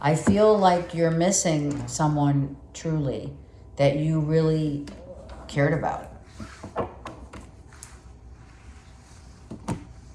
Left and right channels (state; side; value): identical; both; correlation 1.00